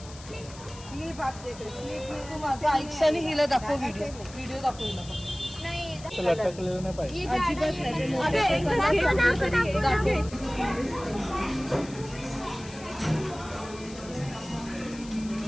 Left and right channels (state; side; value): noise; left; hiss, 18 dB below the sound